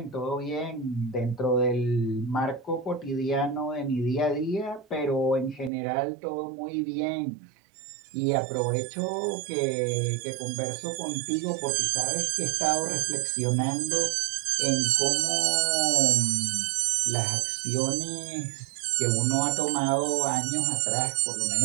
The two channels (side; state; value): left; drops out; at 5.7 s